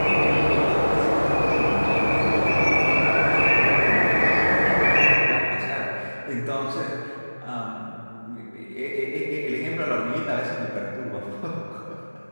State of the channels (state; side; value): inverted; both; correlation -1.00